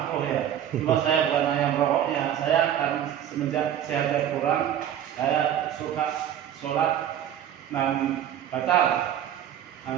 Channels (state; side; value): quieter; left; 10.4 dB